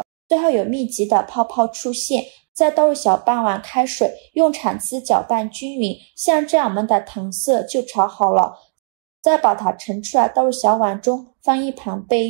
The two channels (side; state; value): left; silent; 58 dB below the other